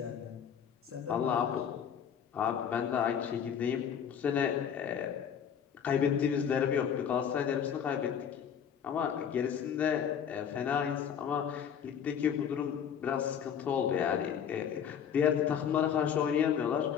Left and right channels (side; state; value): right; quieter; 8.2 dB